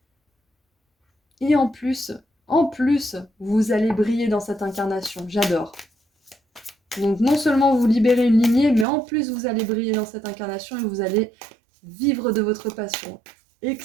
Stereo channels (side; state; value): left; drops out; at 8.8 s